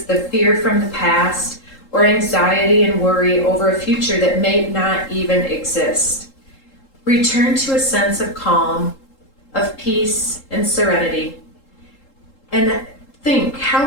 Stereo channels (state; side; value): late; right; 3.7 ms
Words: the fear from the past or anxiety and worry over a future that may not even exist? Return to a sense of calm, of peace and serenity, and think